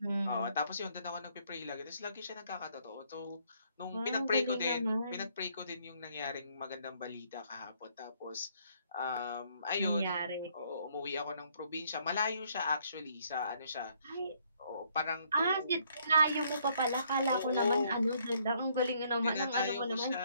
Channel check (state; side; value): inverted; both; correlation -0.67